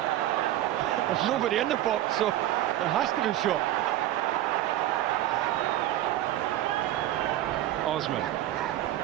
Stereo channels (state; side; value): quieter; left; 13.7 dB